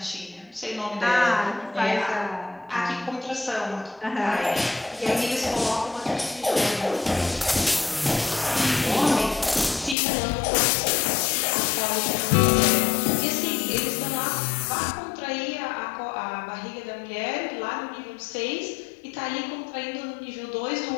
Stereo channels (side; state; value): right; drops out; at 10.0 s